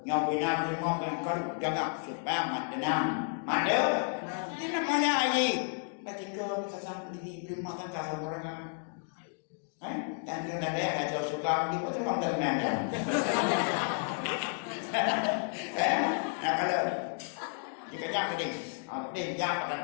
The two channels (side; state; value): right; silent; 56 dB below the other